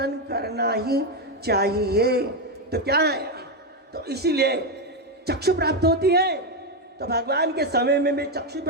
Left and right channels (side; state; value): both; normal; correlation 0.07